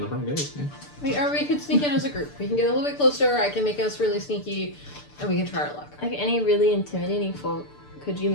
front gate. Yeah. or we could sneak in as a group. We can get a little bit closer, I can make us really sneaky, and we can try our luck. Like any really intimidating folk, could you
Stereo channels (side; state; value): right; late; 6.8 ms